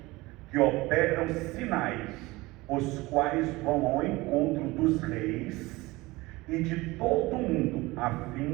que operam sinais, os quais vão ao encontro dos reis e de todo o mundo, a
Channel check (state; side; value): quieter; left; 21.1 dB